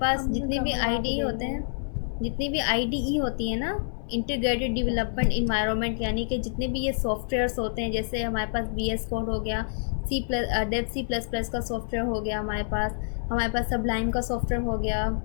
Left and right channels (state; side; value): silent; right; 60 dB below the other